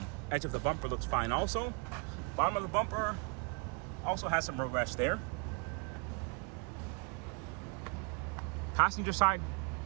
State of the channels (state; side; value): quieter; left; 32.2 dB